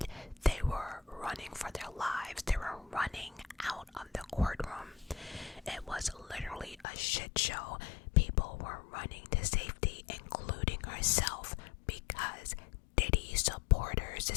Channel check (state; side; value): drops out; right; at 6.9 s